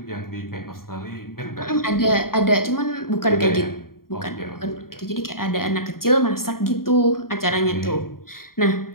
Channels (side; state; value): right; late; 0.92 ms